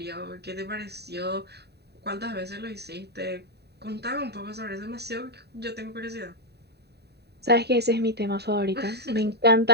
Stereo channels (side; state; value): left; late; 0.48 ms